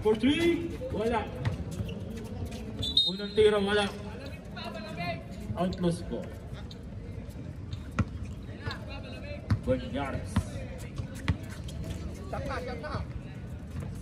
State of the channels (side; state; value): both; identical; correlation 1.00